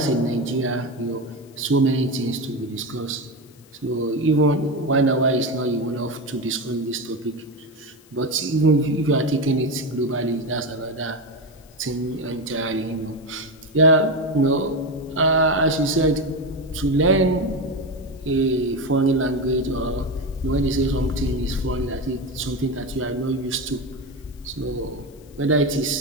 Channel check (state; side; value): noise; left; hiss, 28 dB below the sound